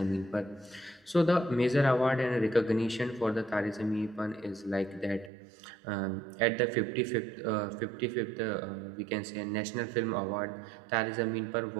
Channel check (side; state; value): left; drops out; at 5.3 s